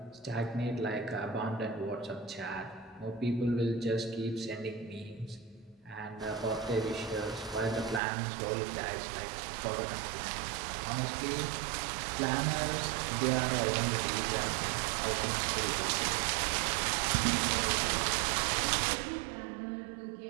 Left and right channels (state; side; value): drops out; left; at 8.0 s